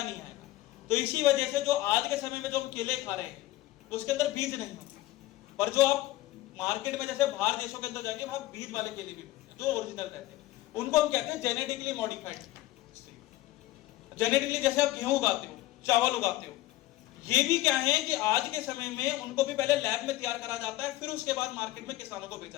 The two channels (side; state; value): right; quieter; 16.8 dB